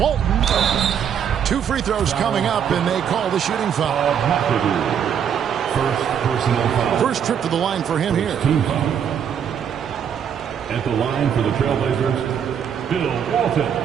2 free throws coming up, and they call the shooting foul. First personal foul. First trip to the line for him here. At the line for the Trailblazers, Bill Walton.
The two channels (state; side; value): quieter; left; 8.3 dB